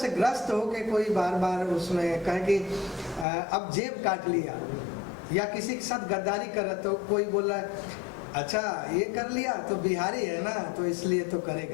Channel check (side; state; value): right; drops out; at 3.2 s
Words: ग्रस्त हो के कोई बार बार उसमें कहे कि अब जेब काट लिया, या किसी के साथ गद्दारी कर रहा तो कोई बोल रहा है अच्छा ये कर लिया तो बिहारी है ना तो इसलिए तो